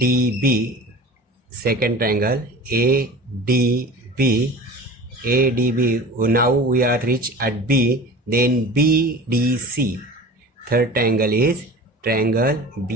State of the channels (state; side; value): normal; both; correlation 0.38